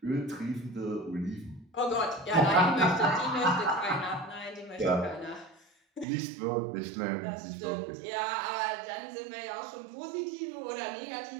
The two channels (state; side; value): drops out; left; at 6.1 s